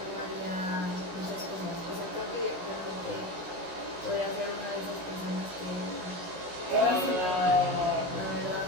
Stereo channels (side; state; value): left; late; 16 ms